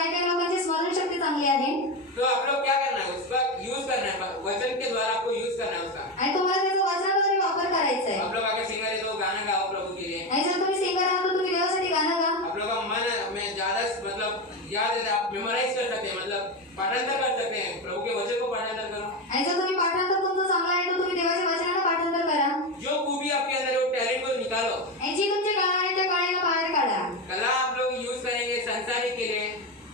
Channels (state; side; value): normal; both; correlation 0.15